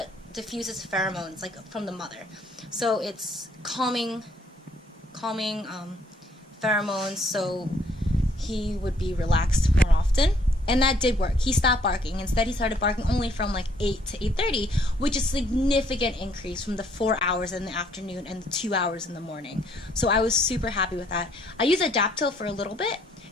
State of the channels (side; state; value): both; normal; correlation 0.65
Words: diffuses pheromones like from the mother. So it's calming pheromones, so he would be relaxed more often. And that did work. He stopped barking. Instead, he started barking only from like 8 to 8:30, which is a significant increase from the 4 hours in the afternoon and the 2 hours in the morning. So I was super happy with that. I used Adaptil for a little bit,